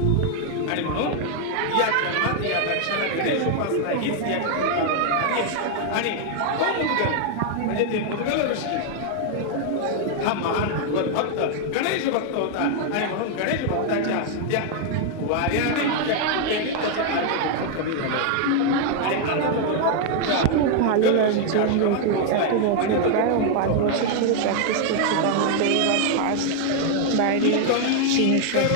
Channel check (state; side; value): different; both; correlation 0.00